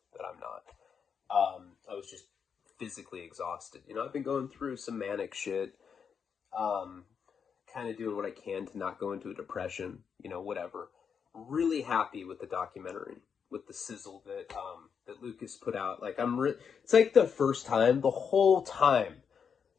that I'm not. I was just physically exhausted. I've been going through some manic shit, kind of doing what I can to not go into a depression, whatever. Really happy with the documentary, with the sizzle that Lucas put out. Like, it's like the first time, the whole time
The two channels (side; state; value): right; quieter; 6.7 dB